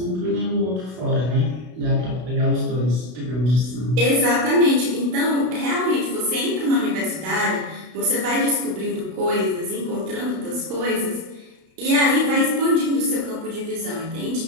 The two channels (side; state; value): left; late; 32 ms